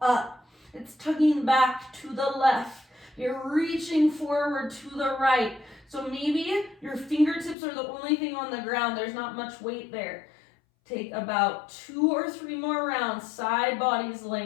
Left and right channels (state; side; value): drops out; right; at 7.6 s